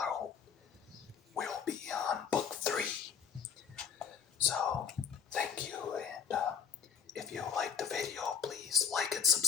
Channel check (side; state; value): right; quieter; 7.0 dB